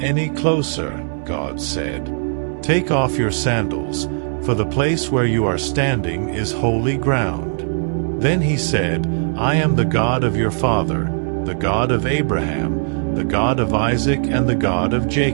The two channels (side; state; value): left; silent; digital silence